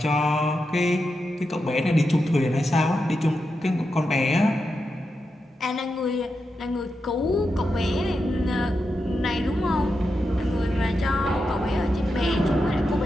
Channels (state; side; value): normal; both; correlation 0.88